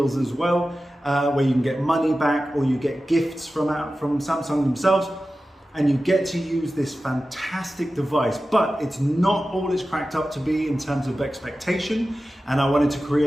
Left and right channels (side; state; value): both; normal; correlation 0.94